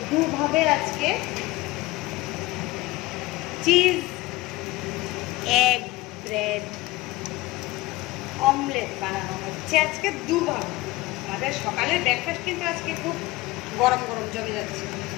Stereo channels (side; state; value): right; quieter; 19.9 dB